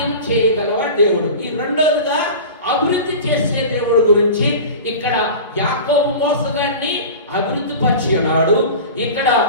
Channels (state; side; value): inverted; both; correlation -0.34